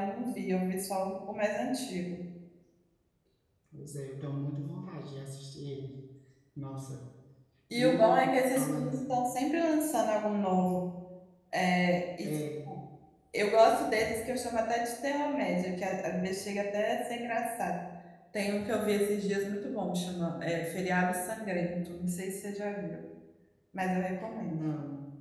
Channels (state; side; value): identical; both; correlation 1.00